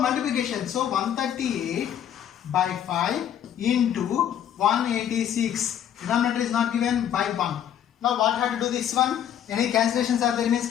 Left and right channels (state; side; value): quieter; right; 10.0 dB